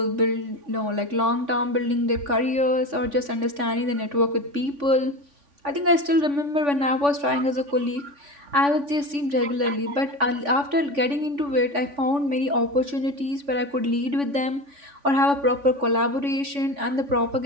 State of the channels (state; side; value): late; left; 3.5 ms